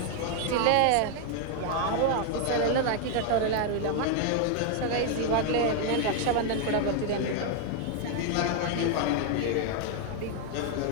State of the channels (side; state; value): both; different; correlation 0.00